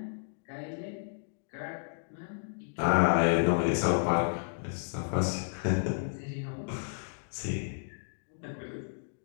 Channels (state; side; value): silent; right; digital silence